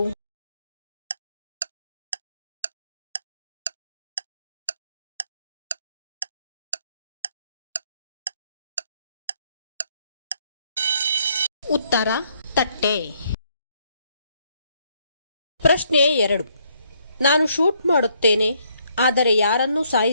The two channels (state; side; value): inverted; both; correlation -0.70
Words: ಉತ್ತರ ತಟ್ಟೆ. ಪ್ರಶ್ನೆ 2. ನಾನು ಶೂಟ್ ಮಾಡುತ್ತೇನೆ, ಆದರೆ ಯಾರನ್ನೂ